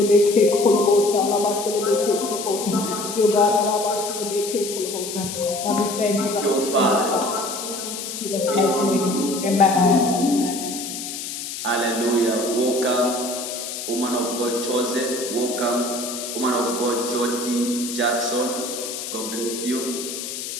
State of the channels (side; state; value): left; noise; hiss, 7 dB below the sound